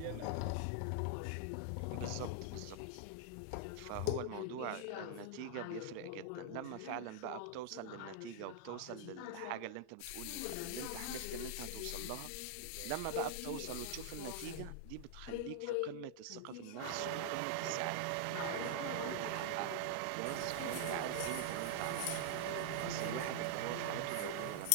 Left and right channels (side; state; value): both; different; correlation -0.01